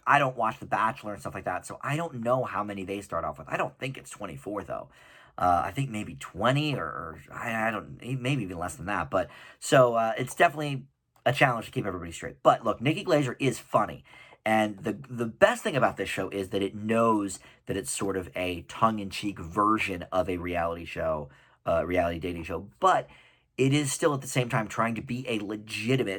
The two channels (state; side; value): identical; both; correlation 1.00